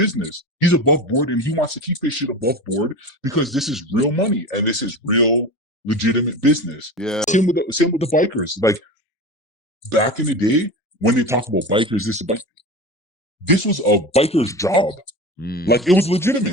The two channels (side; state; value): both; normal; correlation 0.29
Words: He's above board, and he wants to keep his shit above board because this is real money and this is real legitimate business. Yeah. Same with the bikers. Like back in the day when they talk about bikers, this was a biker's job. Like it was